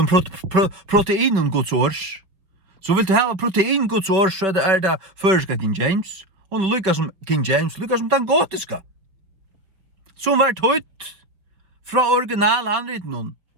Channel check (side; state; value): left; late; 5.1 ms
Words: proteinen Guds års. Så vill du ha protein Guds års, så er det førska King James. Og lykka som King James, lykka som den gotiska. Som var tøyt fra original handriten